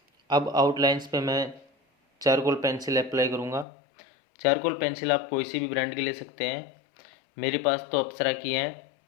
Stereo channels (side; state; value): right; drops out; at 3.7 s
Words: अब आउटलाइंस पे मैं चारकोल पेंसिल अप्लाई करूँगा। चारकोल पेंसिल आप कोई सी भी ब्रांड की ले सकते हैं, मेरे पास तो अप्सरा की है।